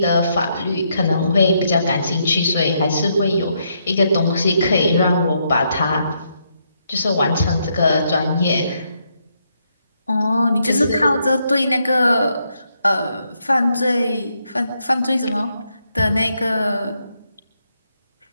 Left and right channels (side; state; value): both; inverted; correlation -0.77